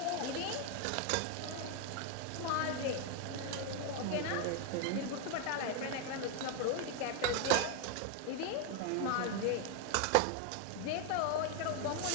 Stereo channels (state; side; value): different; both; correlation 0.01